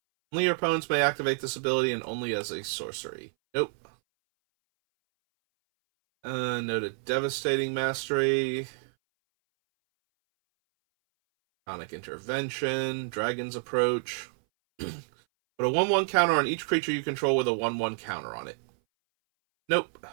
your opponents may activate this ability and only as a sorcery. Nope. No to Devastating Mastery. Sonic Intervention. Dragon's Approach. Put a 1/1 counter on each creature you control with a 1/1 counter on it. Nope.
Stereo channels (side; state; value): left; silent; 59 dB below the other